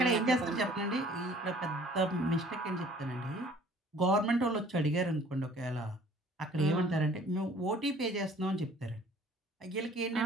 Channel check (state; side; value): normal; both; correlation 0.53